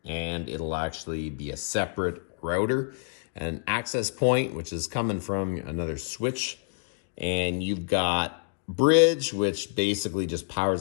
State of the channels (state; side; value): silent; right; digital silence